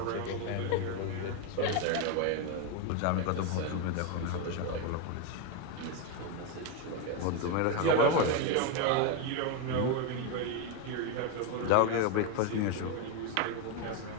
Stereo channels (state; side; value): different; both; correlation 0.02